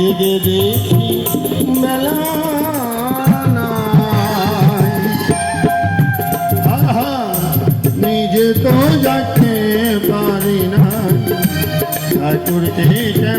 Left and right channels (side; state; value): both; identical; correlation 1.00